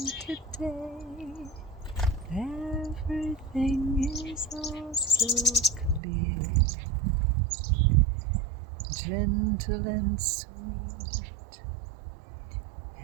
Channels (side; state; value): left; drops out; at 6.0 s